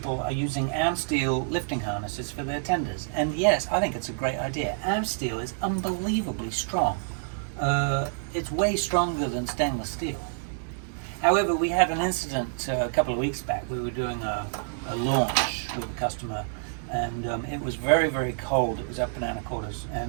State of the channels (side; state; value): left; silent; digital silence